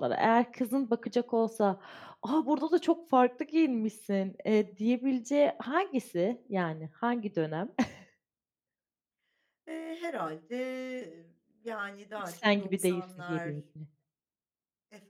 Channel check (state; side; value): identical; both; correlation 1.00